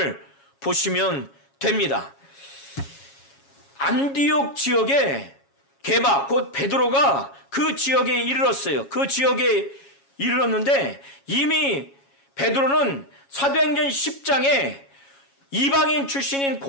보시면 됩니다. 안디옥 지역에 게바, 곧 베드로가 그 지역에 이르렀어요. 그 지역에 이르렀는데 이미 베드로는 사도행전 10장에 이방인 출신인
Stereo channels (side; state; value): right; late; 7.2 ms